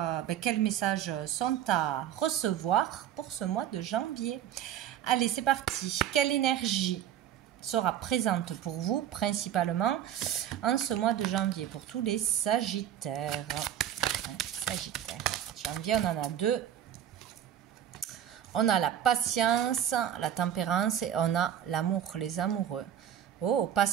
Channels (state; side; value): quieter; left; 10.3 dB